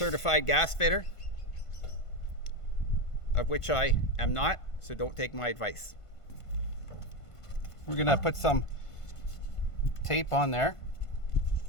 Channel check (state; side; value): late; right; 1.5 ms